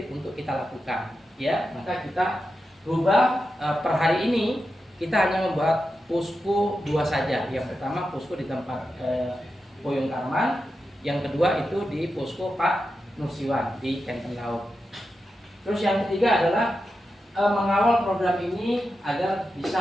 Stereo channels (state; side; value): normal; both; correlation 0.89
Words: untuk kita lakukan. Ya, maka kita rubah per hari ini kita hanya membuat posko 2 saja. Yang pertama posko di tempat Koyung Karman, yang kedua itu di posko Pak Nursiwan di Kenten Laut. Terus yang ketiga adalah mengawal program ini agar